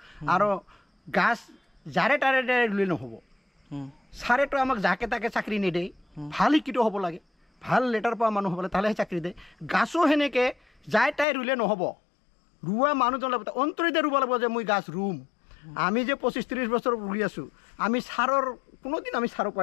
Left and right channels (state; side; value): drops out; right; at 11.2 s